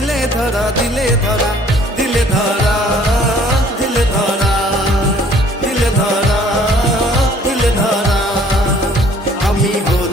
ধরা দিলে ধরা দিলে ধরা দিলে ধরা দিলে ধরা দিলে ধরা আমি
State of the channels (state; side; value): normal; both; correlation 0.57